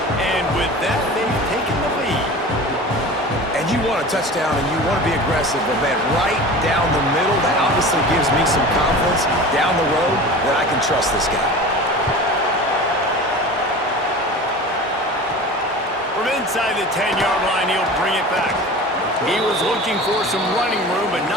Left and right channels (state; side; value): normal; both; correlation 0.36